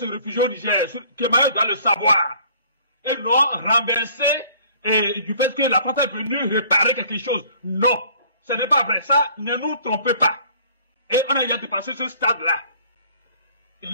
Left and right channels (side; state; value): both; inverted; correlation -0.55